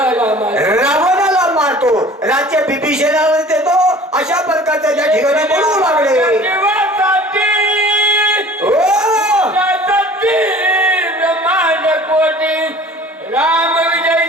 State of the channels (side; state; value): both; normal; correlation 0.46